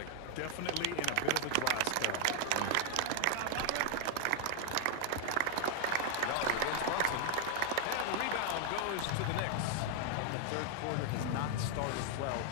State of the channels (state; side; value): different; both; correlation 0.00